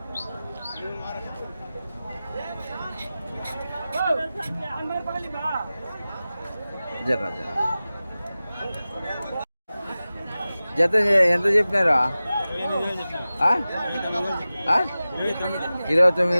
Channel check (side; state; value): both; inverted; correlation -0.96